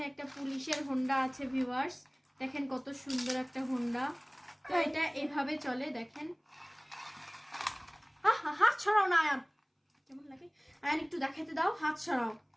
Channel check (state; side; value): identical; both; correlation 1.00